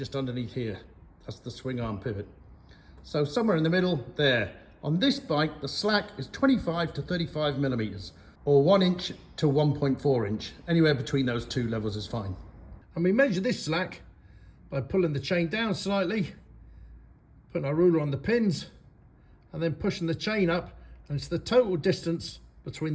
underneath here. That's the swing arm pivot. So somewhere in the middle there. On this bike, the slack is 25 to 35 millimeters, or 1 inch to 1.4 inch. Anywhere between those two levels is fine. And we measure this slack by pulling the chain down slightly, putting our ruler on the pins, and then pushing the chain up, and it's the total distance between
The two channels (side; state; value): both; identical; correlation 1.00